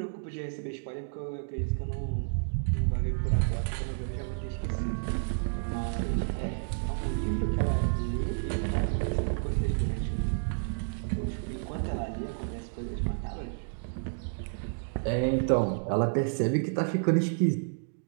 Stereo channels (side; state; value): left; silent; digital silence